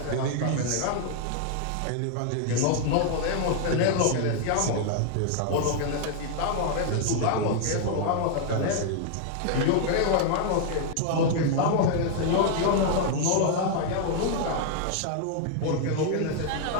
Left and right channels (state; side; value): different; both; correlation 0.00